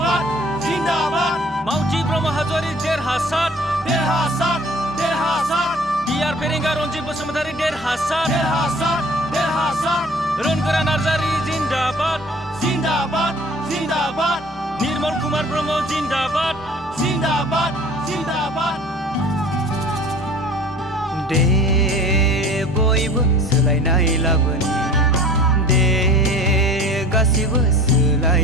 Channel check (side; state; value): both; normal; correlation 0.46